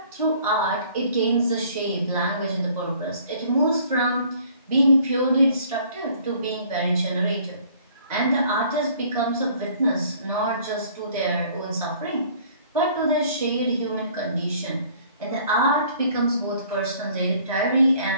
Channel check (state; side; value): inverted; both; correlation -0.56